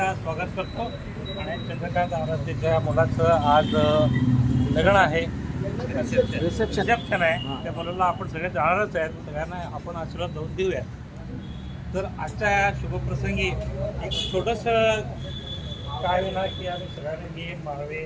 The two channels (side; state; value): both; identical; correlation 1.00